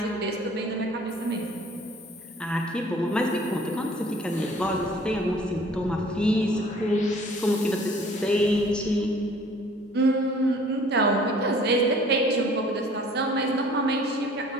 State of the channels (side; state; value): both; normal; correlation 0.53